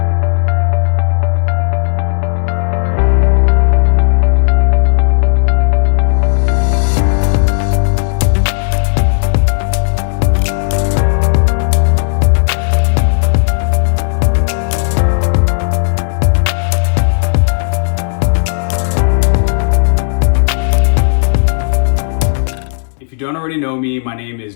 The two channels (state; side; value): silent; right; digital silence